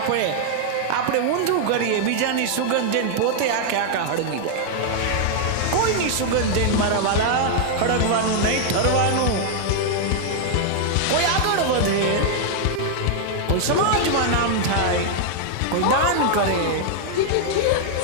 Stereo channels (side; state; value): both; different; correlation 0.00